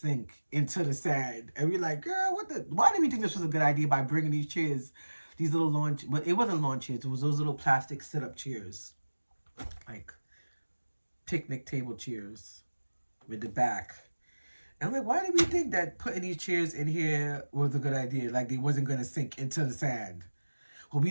into the sand. And we're like, girl, why did we think this was a good idea by bringing these chairs These little lawn, but it wasn't lawn chairs. It was those little plastic sit-up chairs, like picnic table chairs with the back. And I'm like, why did we think that putting these chairs in here was a good idea? Like they wasn't gonna sink into the sand. Well, we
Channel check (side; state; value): both; inverted; correlation -1.00